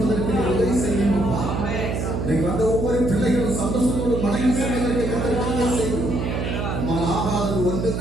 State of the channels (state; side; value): noise; right; hum, 2 dB below the sound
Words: உதவி செய்யுங்கப்பா. இன்னைக்கு வந்த ஒவ்வொரு பிள்ளைகளும் சந்தோஷத்தோடு மனைவி செல்வதற்கு கத்தர் செய்யும். ஆகாதது